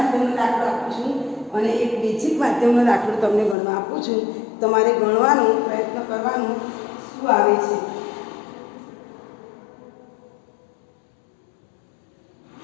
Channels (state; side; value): drops out; right; at 3.6 s